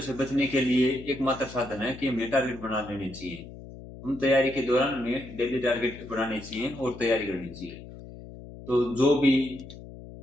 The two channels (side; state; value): left; noise; hum, 15 dB below the sound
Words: से बचने के लिए एकमात्र साधन है कि हमें टारगेट बना लेने चाहिए। हम तैयारी के दौरान हमें डेली टारगेट बनाने चाहिए और तैयारी करनी चाहिए। तो जो भी